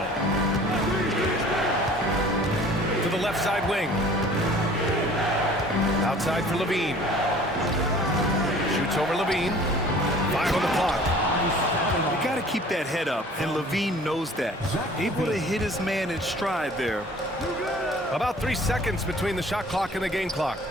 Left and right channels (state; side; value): normal; both; correlation 0.49